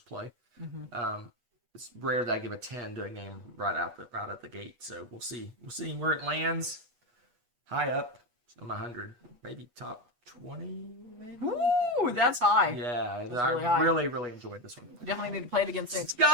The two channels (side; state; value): left; late; 8.3 ms